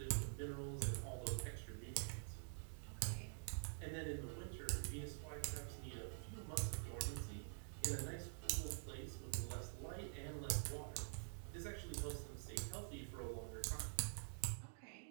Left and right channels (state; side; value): silent; left; digital silence